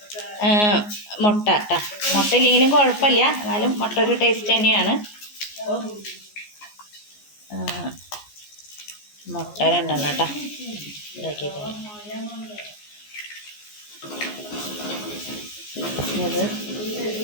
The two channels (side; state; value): right; late; 14 ms